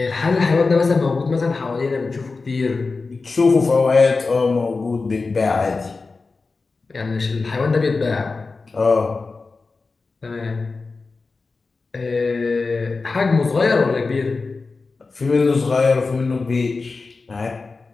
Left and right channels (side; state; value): right; quieter; 4.0 dB